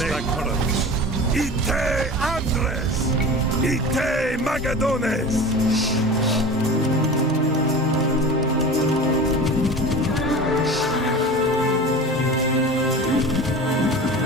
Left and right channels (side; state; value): both; normal; correlation 0.34